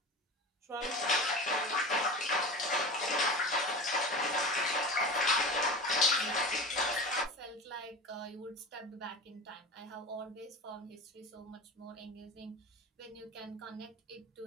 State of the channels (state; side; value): normal; both; correlation 0.32